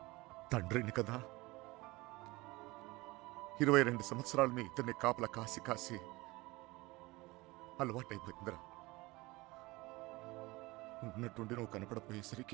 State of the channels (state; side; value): quieter; left; 21.9 dB